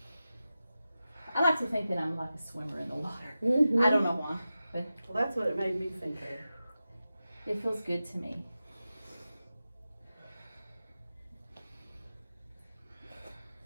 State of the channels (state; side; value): inverted; both; correlation -0.93